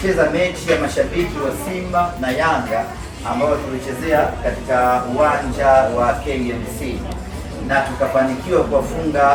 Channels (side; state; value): both; identical; correlation 1.00